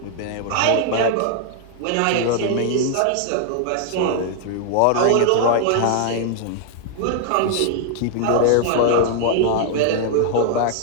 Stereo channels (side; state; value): both; different; correlation 0.00